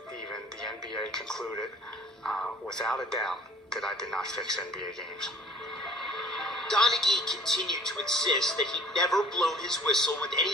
even the NBA concluded without a doubt that I did not fix NBA games. Donaghy continued to insist that he'd never blown his whistle with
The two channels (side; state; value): both; normal; correlation 0.50